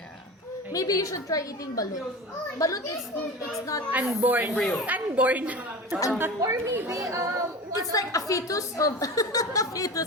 Maybe you should try eating balut. Balut it's not Unborn. Unborn. or maybe it's like a fetus of a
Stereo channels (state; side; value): normal; both; correlation 0.31